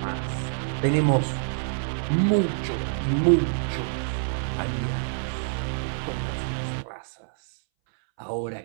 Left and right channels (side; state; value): left; silent; 61 dB below the other